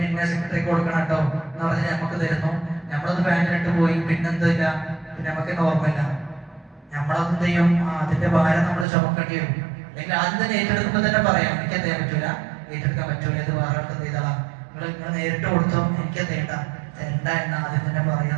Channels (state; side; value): drops out; left; at 8.8 s